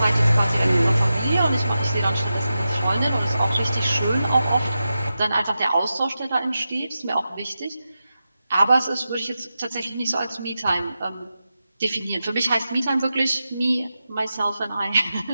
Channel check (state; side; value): inverted; both; correlation -0.91